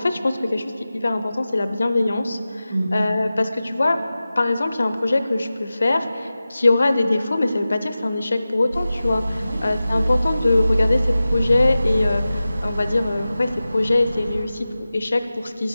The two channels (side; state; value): both; inverted; correlation -0.95